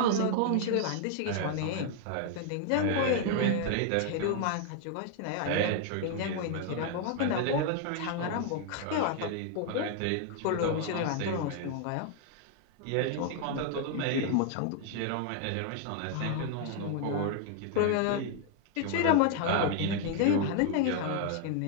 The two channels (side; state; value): both; different; correlation 0.00